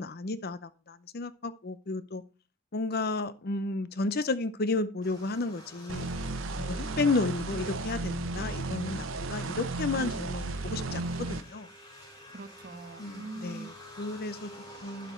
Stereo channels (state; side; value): normal; both; correlation 0.37